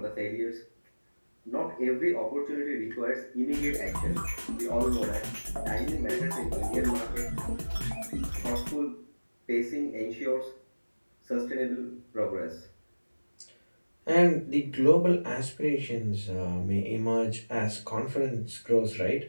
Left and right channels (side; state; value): both; inverted; correlation -1.00